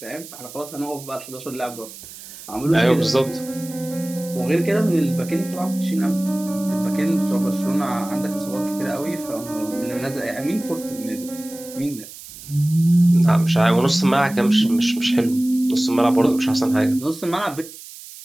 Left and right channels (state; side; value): noise; right; hiss, 16 dB below the sound